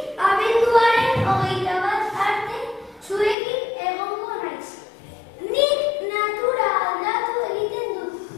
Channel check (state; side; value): drops out; right; at 3.4 s